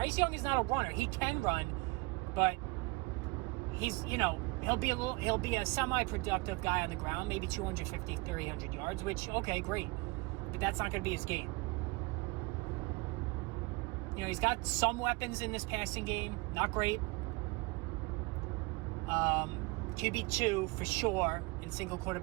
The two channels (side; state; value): left; quieter; 25.3 dB